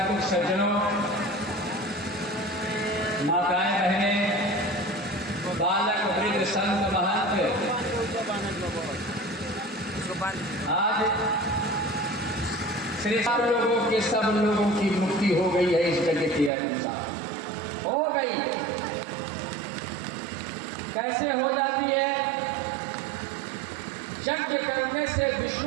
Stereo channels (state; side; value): drops out; left; at 16.5 s